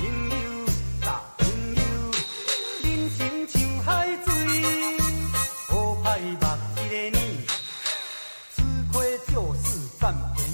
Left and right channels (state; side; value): inverted; both; correlation -1.00